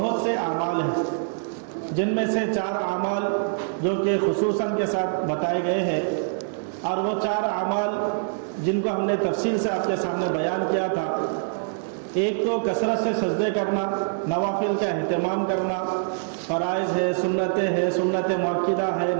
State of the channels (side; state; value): left; silent; digital silence